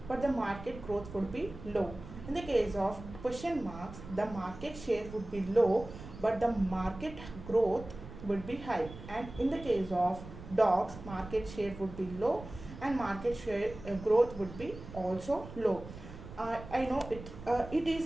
but the market growth would be low. In the case of question marks, the market share would be low, but the market growth would be high. And in the case of dogs, market share would be low and market share growth would be also low. I know it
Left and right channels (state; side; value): noise; right; rumble, 14 dB below the sound